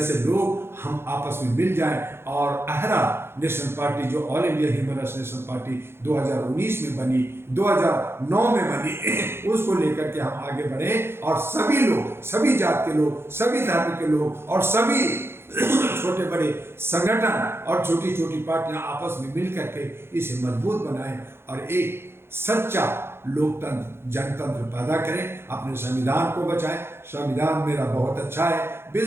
लोग, हम आपस में मिल जाएं, और अहरा नेशनल पार्टी जो all India human rights national party 2019 में बनी, 2009 में बनी, उसको लेकर के हम आगे बढ़े, और सभी लोग, सभी जात के लोग, सभी धर्म के लोग, और सभी छोटे बड़े संगठन और छोटी छोटी पार्टियां आपस में मिल करके इसे मजबूत बनाएं और एक सच्चा लोकतंत्र जनतंत्र पैदा करें, अपने संविधान को बचाएं। संविधान मेरा बहुत अच्छा है,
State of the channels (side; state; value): left; late; 0.12 ms